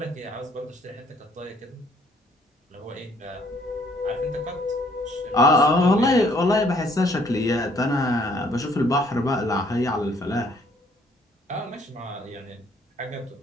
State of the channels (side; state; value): both; normal; correlation 0.63